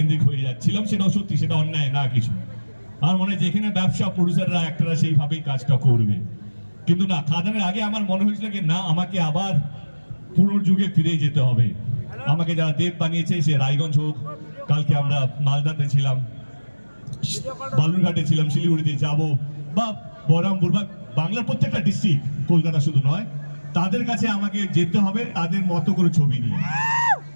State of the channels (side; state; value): both; inverted; correlation -1.00